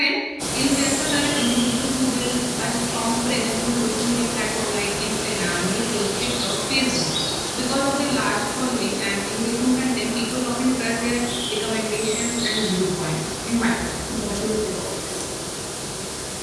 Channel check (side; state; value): both; identical; correlation 1.00